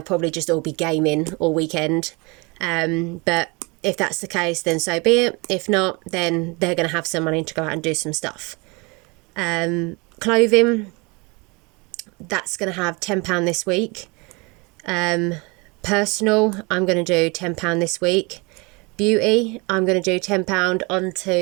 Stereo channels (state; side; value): quieter; left; 27.8 dB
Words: probably just all be gaming all weekend. But if that's the case, then so be it. If not, then they're going to have some money to go out and do some stuff. Clothing, that's going to have £10 this week. Personal, I'm going to do £10 this week. beauty, I'm going to do £10